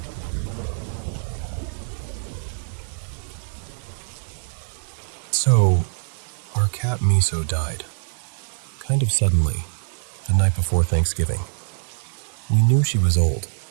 So, our cat Miso died. Kind of suddenly, the night before Thanksgiving. We knew she was old,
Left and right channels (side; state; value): left; silent; digital silence